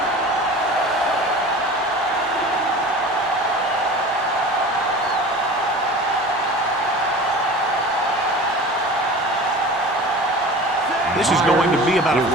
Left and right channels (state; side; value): normal; both; correlation 0.38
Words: This is going to be about a